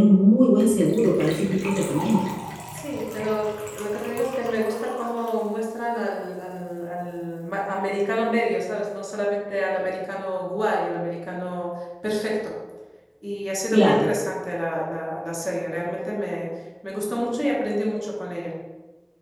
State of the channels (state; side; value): identical; both; correlation 1.00